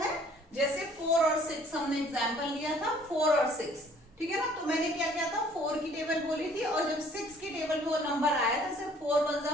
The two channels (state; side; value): normal; both; correlation 0.57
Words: जैसे 4 और 6 हमने एग्जांपल लिया था, 4 और 6, ठीक है ना। तो मैंने क्या किया था, 4 की टेबल बोली थी और जब 6 की टेबल में वो नंबर आया था, जैसे 4 1 जा